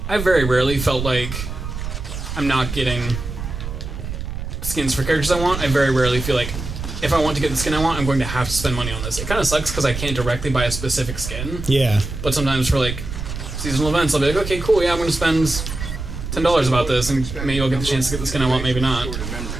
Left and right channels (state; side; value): noise; right; rumble, 7 dB below the sound